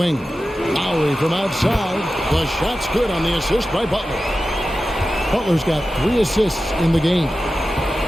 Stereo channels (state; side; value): normal; both; correlation 0.93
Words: Lowry from outside. The shot's good on the assist by Butler. Butler's got 3 assists in the game.